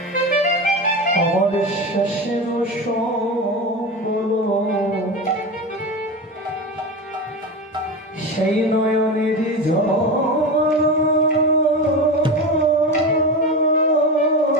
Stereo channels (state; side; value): normal; both; correlation 0.23